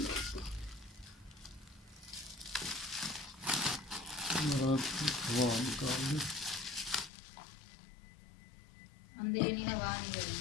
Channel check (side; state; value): right; drops out; at 7.1 s